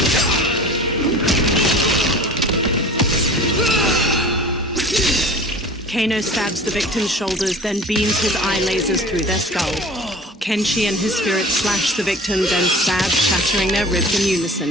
Kano stabs the victim's shoulders, then beams his eye lasers through their skull. Kenshi and his spirit slash the victim, then stab, shattering their ribs in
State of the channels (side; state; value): both; normal; correlation 0.41